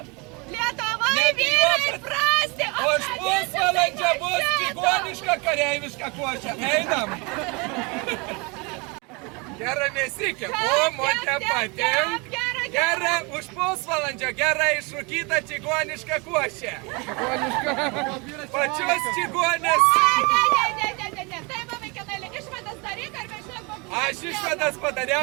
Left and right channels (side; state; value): left; quieter; 28.9 dB